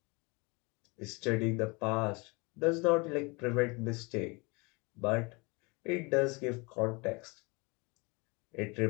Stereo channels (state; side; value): quieter; right; 28.1 dB